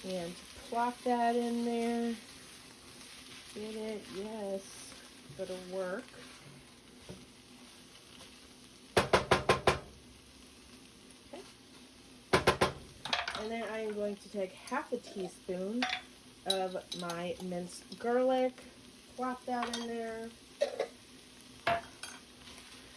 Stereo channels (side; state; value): both; identical; correlation 1.00